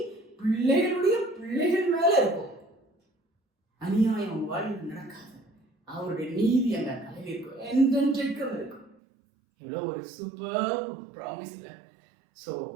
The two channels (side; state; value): left; drops out; at 9.0 s